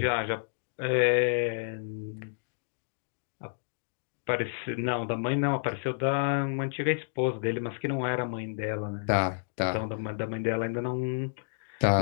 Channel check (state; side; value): silent; right; digital silence